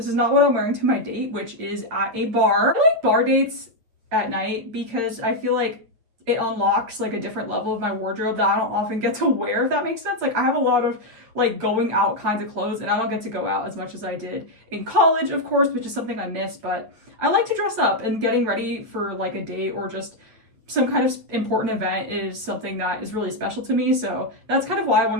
is not what I'm wearing to my date, which is at a bar. I like bar dates at night because I feel like it unlocks like a different level of my wardrobe that I don't often get to wear, if that makes sense. Like I have a lot of like going out kinds of clothes and I don't get to go out as much as I did in college, of course, which is something I miss, but I like to dress up, and getting ready for like a date or just some kind of important event is something that is really special to me. So that's kind of why I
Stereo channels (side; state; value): left; late; 8.9 ms